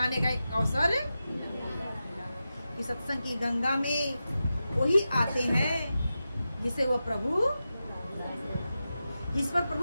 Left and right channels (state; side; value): inverted; both; correlation -0.92